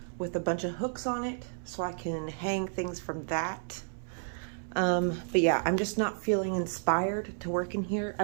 with a bunch of hooks on it so I can hang things from that. But yeah, I'm just not feeling inspired to work in here.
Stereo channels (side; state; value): left; silent; 57 dB below the other